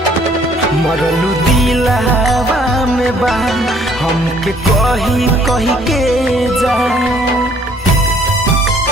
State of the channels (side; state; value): both; normal; correlation 0.61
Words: मरलू दिलावा में बा हमके कही कही के जा